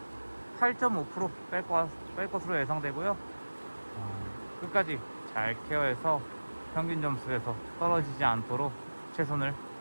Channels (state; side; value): inverted; both; correlation -1.00